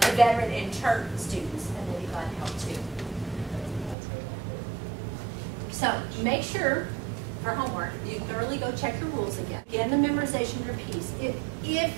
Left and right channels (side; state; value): left; drops out; at 4.0 s